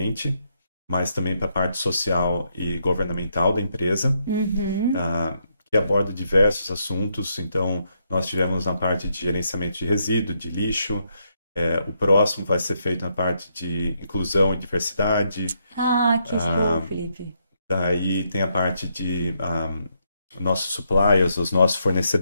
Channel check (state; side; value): inverted; both; correlation -0.77